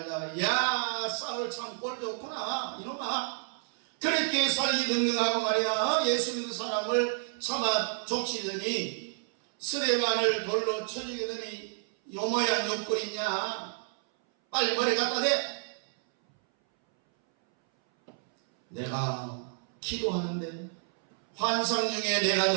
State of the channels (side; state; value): left; silent; 58 dB below the other